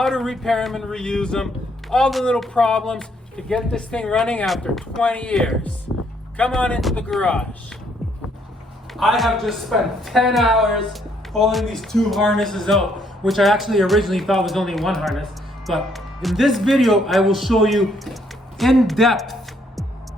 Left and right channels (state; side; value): normal; both; correlation 0.69